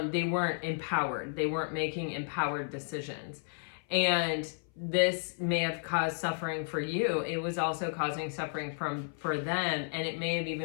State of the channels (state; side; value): silent; right; 56 dB below the other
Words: they weren't empowered. They weren't making empowered decisions. And this may have caused suffering for you. It was also causing suffering for them. And it may have